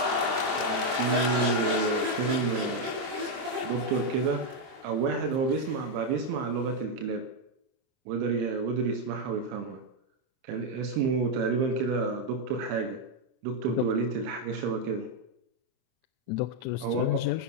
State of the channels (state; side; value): late; left; 23 ms